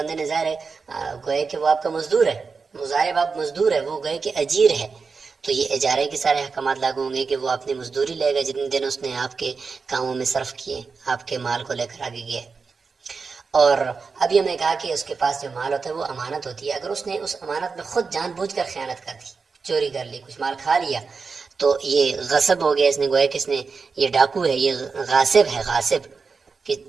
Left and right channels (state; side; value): quieter; left; 4.9 dB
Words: نے ظاہر ہے گوئے کہ وہ آپ کا مزدور ہے، مضارب آپ مزدور ہے، وہ گئے کہ اجیر ہے، تو یہ اجارے کے سارے احکامات لاگو ہوں گے کہ وہ اپنی مزدوری لے گا جتنے دن اس نے آپ کے کاموں میں صرف کیے، آپ کے مال کو لے کر آگے گیا۔ اور ابھی ہم نے کہا کہ اس کے پاس جو مال ہوتا ہے وہ امانت ہوتی ہے، اگر اس نے اس امانت میں خود جان بوجھ کر خیانت کر دی، چوری کر لی، کچھ مال کھا لیا، تو یہ غصب ہو گیا، اس نے گویا کہ اس نے یہ ڈاکو ہے، یہ غاصب ہے، غاصب کہ